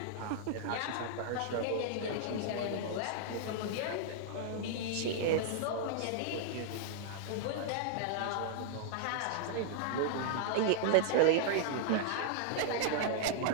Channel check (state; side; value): different; both; correlation -0.01